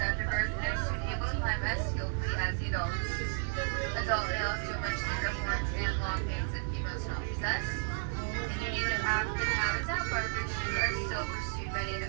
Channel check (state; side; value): silent; left; 56 dB below the other